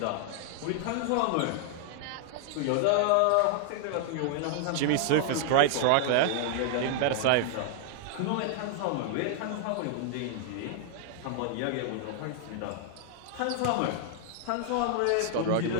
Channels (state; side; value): different; both; correlation 0.00